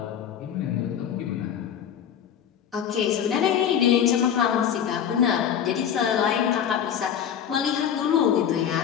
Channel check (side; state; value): right; quieter; 8.9 dB